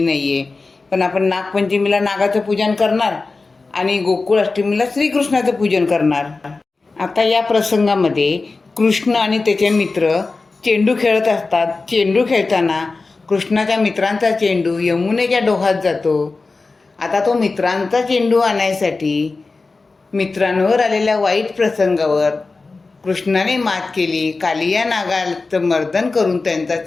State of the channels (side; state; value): right; quieter; 3.8 dB